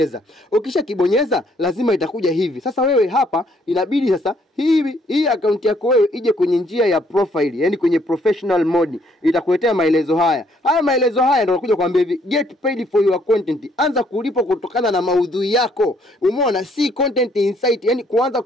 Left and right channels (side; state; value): both; normal; correlation 0.67